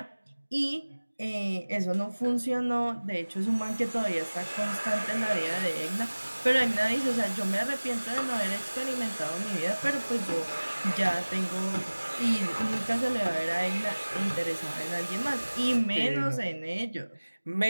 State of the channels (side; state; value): both; inverted; correlation -1.00